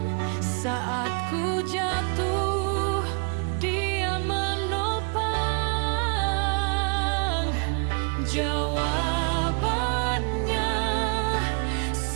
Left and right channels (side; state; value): left; quieter; 36.3 dB